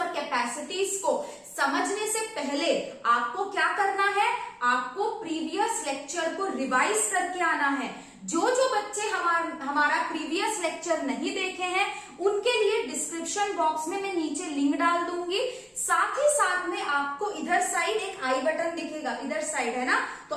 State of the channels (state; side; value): identical; both; correlation 1.00